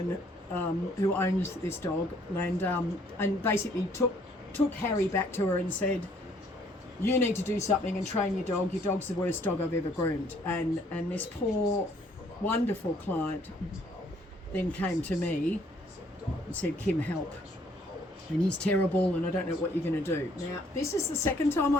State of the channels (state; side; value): normal; both; correlation 0.63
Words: who owns this dog, and basically took Harry back to her and said, you need to do something and train your dog. Your dog's the worst dog I've ever groomed. And this poor, wonderful client then came to me and said, Kim, help. And he's terrible and I don't know what you're going to do. Now, this is the second time